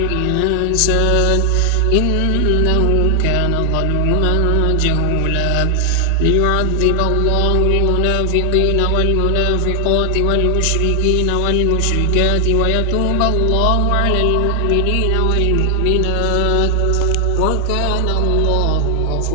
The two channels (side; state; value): both; different; correlation 0.00